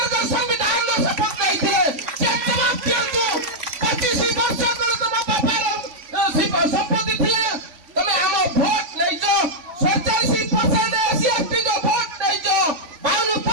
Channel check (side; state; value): left; late; 3.5 ms